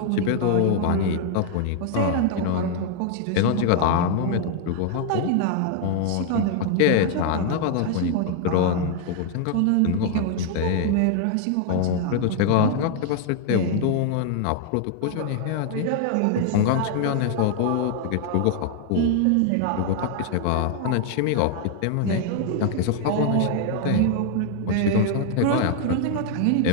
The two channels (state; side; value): different; both; correlation 0.00